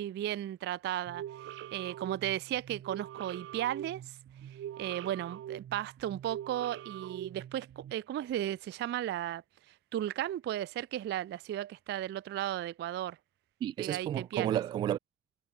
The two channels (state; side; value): quieter; left; 11.6 dB